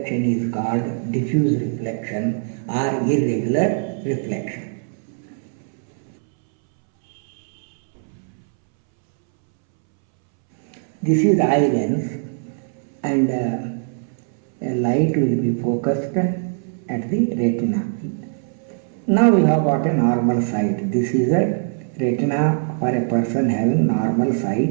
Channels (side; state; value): left; silent; 65 dB below the other